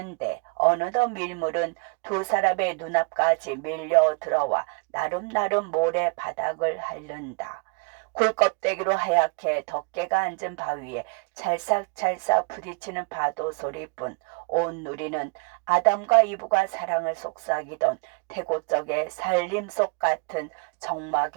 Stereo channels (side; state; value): left; quieter; 32.4 dB